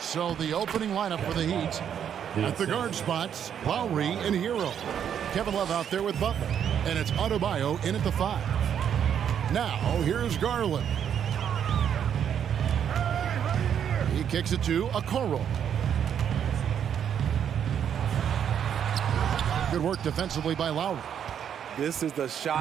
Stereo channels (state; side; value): quieter; left; 8.7 dB